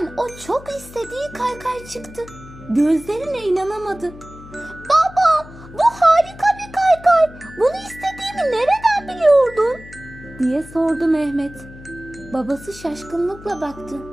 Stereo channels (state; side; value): noise; left; hum, 18 dB below the sound